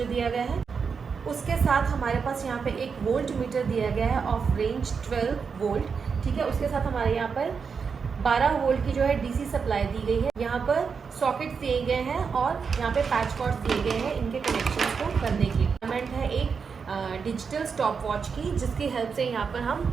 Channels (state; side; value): quieter; left; 5.7 dB